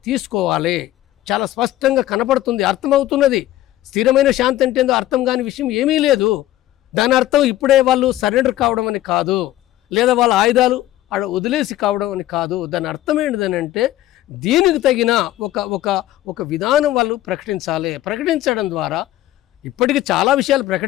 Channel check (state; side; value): quieter; right; 14.6 dB